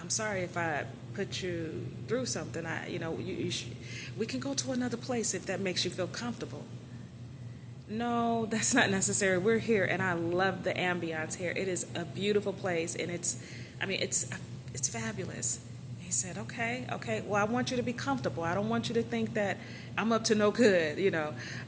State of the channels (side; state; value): both; identical; correlation 1.00